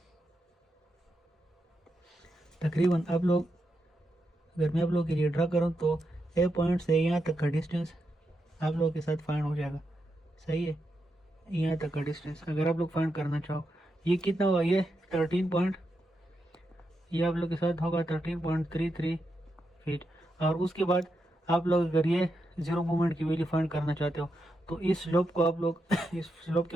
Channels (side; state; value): both; normal; correlation 0.85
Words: आप लोग, अगर मैं आप लोगों के लिए ड्रा करूँ तो ए पॉइंट से यहाँ तक का डिस्टेंस आप लोगों के साथ फाइंड हो जाएगा, सही है। यहाँ तक का डिस्टेंस अगर आप लोग फाइंड करना चाहो, ये कितना होगा, ये 13 पॉइंट, ये आप लोग के साथ होगा 13.33 फीट। और उसके बाद आप लोग अगर ये 0 मूवमेंट की वैल्यू फाइंड करना चाहते हो तो इस स्लोप को आप लोग इस स्लोप के